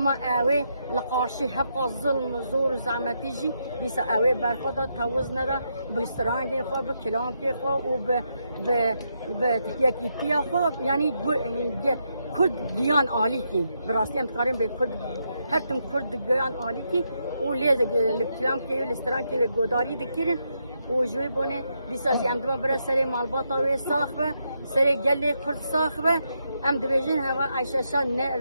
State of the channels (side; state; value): both; inverted; correlation -0.81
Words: اوي لقارشي حق الظلم زور زعمتيجي بيس اوي برخدا توزنا دا بسترانجي خو بكلامكي خو وب ب يكيتيا خو يعني كرد جيان عاليكي براستي ام تقارن بكرد هرتم كرد جيان عاليكي وليز الكلامكي والسترانكي وغداري دكيرن وجوي بونه بيساجي ام دما برا سري مالباطا وي صاخبه سري جلي كرد صاخبه ام دبيجن هوا عايشه شان